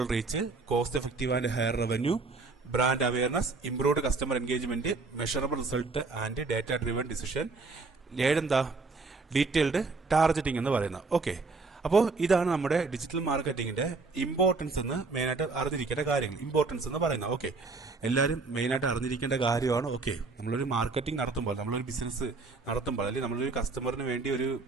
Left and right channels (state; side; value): quieter; left; 3.9 dB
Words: reach, cost effective and higher revenue, brand awareness, improved customer engagement, measurable result and data driven decision, 7 detailed targeting എന്ന് പറയുന്നത്. ഓക്കെ, അപ്പോൾ ഇതാണ് നമ്മുടെ ഡിജിറ്റൽ മാർക്കറ്റിംഗിന്റെ ഇമ്പോർട്ടൻസ് എന്ന് മെയിനായിട്ട് അറിഞ്ഞിരിക്കേണ്ട കാര്യങ്ങൾ. ഇമ്പോർട്ടൻസ് എന്ന് പറയുന്നത് ഓക്കെ, എല്ലാവരും മെയിനായിട്ട് അറിഞ്ഞിരിക്കേണ്ട കാര്യമാണ്. ഓക്കെ, നമ്മളൊരു മാർക്കറ്റിംഗ് നടത്തുമ്പോൾ, നമ്മളൊരു ബിസിനസ് നടത്തുമ്പോൾ, അല്ലെങ്കിൽ നമ്മളൊരു കസ്റ്റമറിന് വേണ്ടി ഒരു